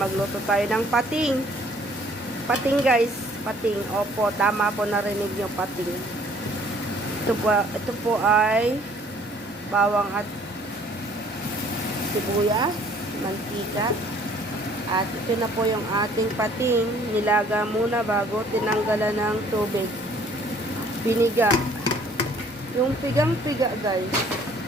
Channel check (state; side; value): normal; both; correlation 0.58